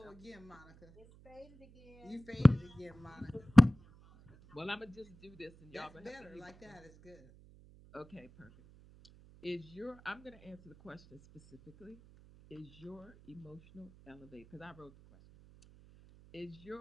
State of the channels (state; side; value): noise; right; hum, 24 dB below the sound